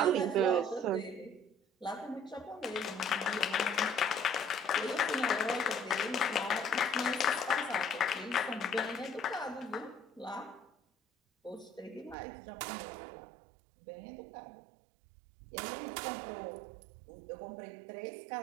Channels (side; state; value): left; drops out; at 12.2 s